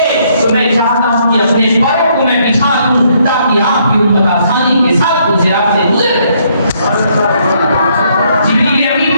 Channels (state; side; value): inverted; both; correlation -0.70